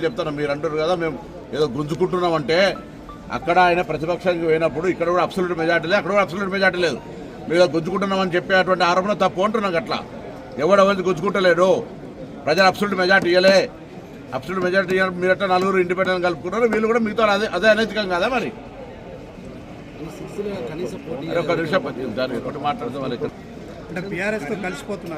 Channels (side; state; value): both; identical; correlation 1.00